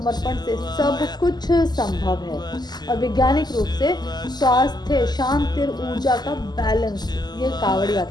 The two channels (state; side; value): late; right; 0.20 ms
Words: से सब कुछ संभव है। और वैज्ञानिक रूप से स्वास्थ्य, शांति और ऊर्जा का बैलेंस ये कांवड़